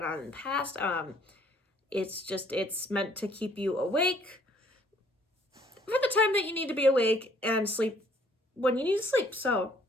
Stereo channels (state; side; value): normal; both; correlation 0.61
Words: on in the past. It's meant to keep you awake for the time that you need to be awake and sleep when you need to sleep. So,